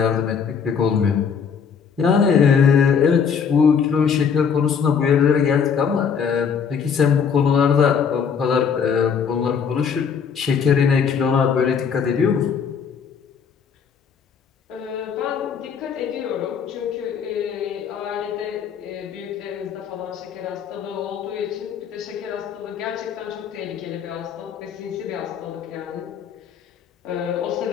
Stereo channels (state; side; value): quieter; right; 6.7 dB